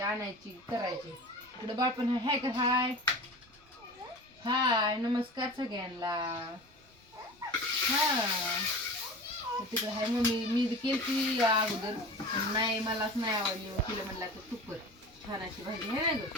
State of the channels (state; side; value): normal; both; correlation 0.36